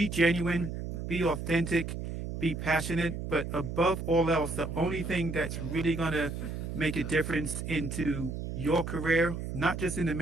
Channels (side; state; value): right; noise; hum, 6 dB below the sound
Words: genuine, be authentic, be passionate, but above all else, the only thing that's really going to make a difference into your career, not just in the